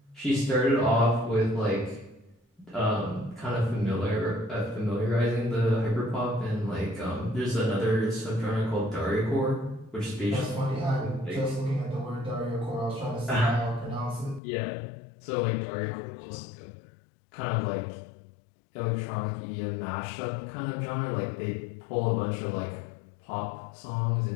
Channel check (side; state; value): right; drops out; at 14.4 s